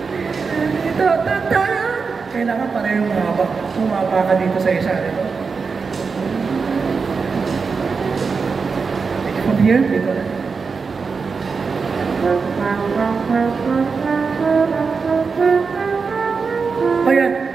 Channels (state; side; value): quieter; left; 5.0 dB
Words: Ta ta ta. Kailangan parehong mahaba. Bumaba ka dito sa isa. Dito. From here, dito na. Ayan.